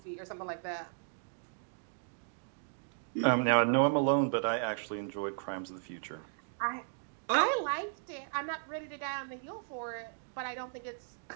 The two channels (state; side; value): silent; left; digital silence